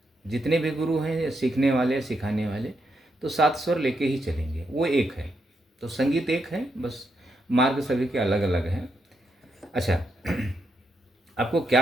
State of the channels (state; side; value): normal; both; correlation 0.81